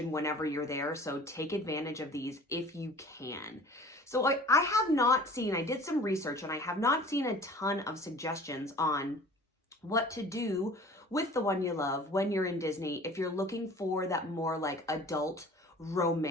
whenever you're there, so take advantage of these if you can. So I have not seen, I did some research, and I have not seen a ton of suggestions on what to do with the one you love when you're in Disney if you're looking for that more like adult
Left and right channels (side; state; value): both; normal; correlation 0.46